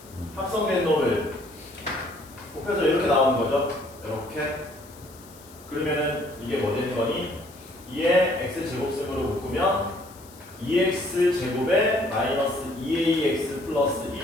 합성된 놈을 곱해서 이렇게 나오는 거죠. 이렇게. 그러면은 이게 뭐 되는 거니? 2의 x제곱승으로 묶으면 2x제곱에 마이너스 2ax 플러스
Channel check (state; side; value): noise; left; hiss, 22 dB below the sound